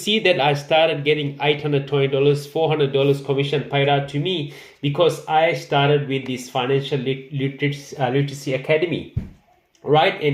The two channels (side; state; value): both; identical; correlation 1.00